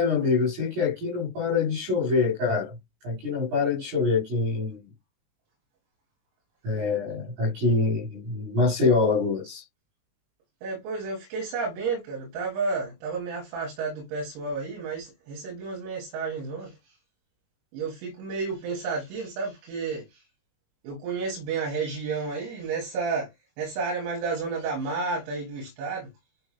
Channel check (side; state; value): left; late; 19 ms